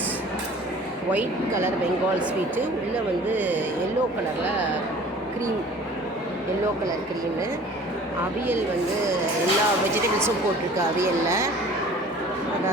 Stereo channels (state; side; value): normal; both; correlation 0.47